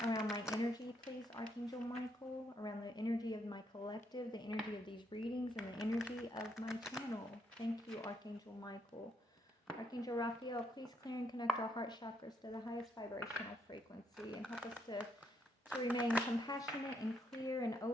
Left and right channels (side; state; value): both; normal; correlation 0.75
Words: my energy, please, Archangel Michael, around the energy of my collective, the energy of these readings, and the energy of my channel. Thank you, Archangel Michael. Archangel Raphael, please clear and connect our heart chakras to the highest vibrational frequency and help us to remain compassionate and clear and